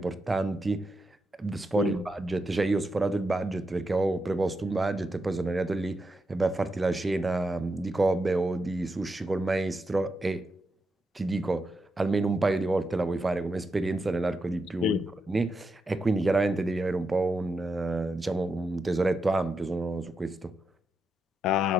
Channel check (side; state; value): both; normal; correlation 0.85